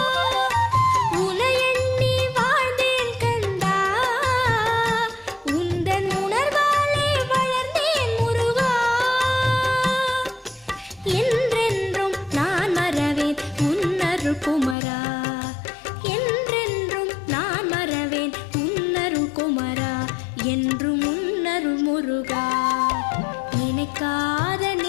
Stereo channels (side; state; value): right; drops out; at 14.8 s